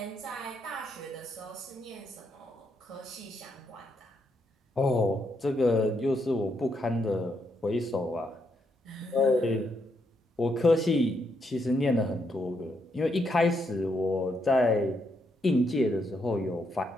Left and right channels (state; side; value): normal; both; correlation 0.78